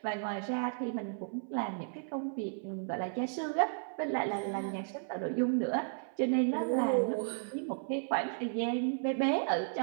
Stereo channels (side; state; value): left; silent; 55 dB below the other